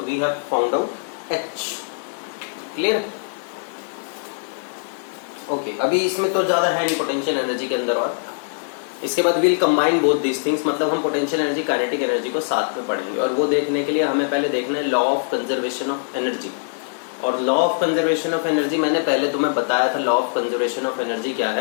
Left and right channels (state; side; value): silent; right; digital silence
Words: we have found out h। Clear? Okay, अभी इसमें तो ज्यादा है नहीं पोटेंशियल एनर्जी के अंदर, और इसके बाद will combine both these things, मतलब हम पोटेंशियल एनर्जी काइनेटिक एनर्जी को साथ में पढ़ेंगे, और वो देखने के लिए हमें पहले देखना है law of conservation of energy. और law of conservation of energy मैंने पहले तुम्हें बताया था, law of conservation of energy क्या